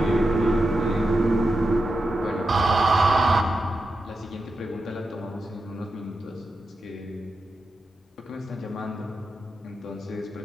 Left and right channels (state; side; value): normal; both; correlation 0.89